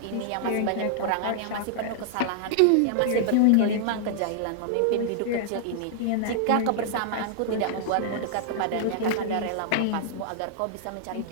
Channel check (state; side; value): different; both; correlation -0.01